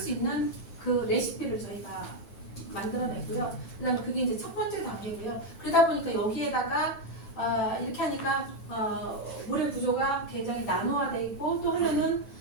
있는 그 레시피를 저희가 만들어냈고요. 그다음에 그게 이제 첫 번째 단계고요. 그러다 보니까 여기에다가 이렇게 하니까 물의 구조가 굉장히 나노화되어 있고 또 하나는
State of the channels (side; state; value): right; late; 9.0 ms